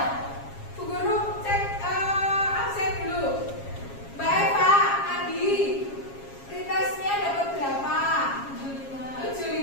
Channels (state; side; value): late; right; 7.3 ms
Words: Bu Guru cek absen dulu. Mbak Eva, Adi, pretestnya dapat berapa?